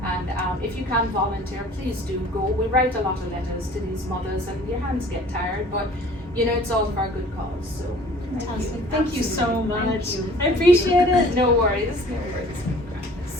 And if you can volunteer, please do go. We write a lot of letters to these mothers, and your hands get tired, but you know, it's all for a good cause. So Fantastic. Thank you so much. Thank you. I appreciate it. No worries. No worries.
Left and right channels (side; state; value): both; normal; correlation 0.50